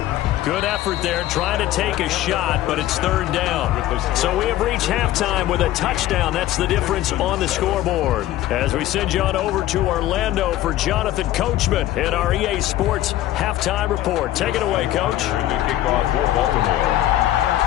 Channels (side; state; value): right; quieter; 14.1 dB